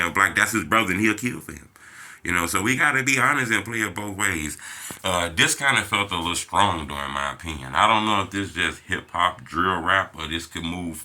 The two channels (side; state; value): both; identical; correlation 1.00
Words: Black, that's his brother and he'll kill for him. You know, so we gotta be honest and play it both ways. This kind of felt a little strong, though, in my opinion. I don't know if this is just hip hop, drill rap, or this could move